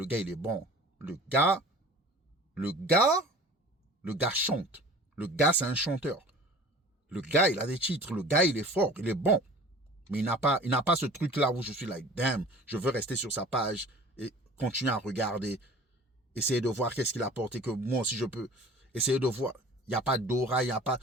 gars, il est bon. Le gars chante. Le gars, c'est un chanteur. Le gars, il a des titres. Le gars, il est fort. Il est bon. Mais il n'a pas ce truc-là où je suis like, damn, je veux rester sur sa page et continuer à regarder. Essayer de voir qu'est-ce qu'il a apporté que moi aussi je peux. Essayer de voir. Il n'y a pas d'aura, il n'y a pas.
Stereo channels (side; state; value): both; normal; correlation 0.43